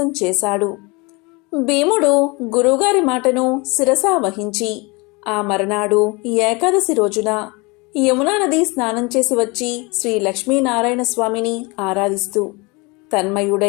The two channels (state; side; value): quieter; right; 27.1 dB